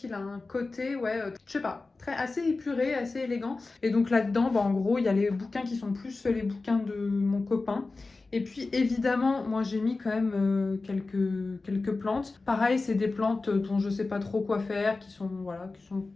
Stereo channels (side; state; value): right; quieter; 3.6 dB